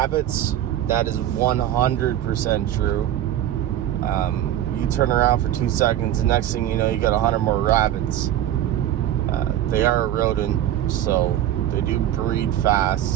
that is 100% true. You turn around for 2 seconds, the next thing you know, you got 100 more rabbits. They are a rodent, so they do breed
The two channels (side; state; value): left; quieter; 12.0 dB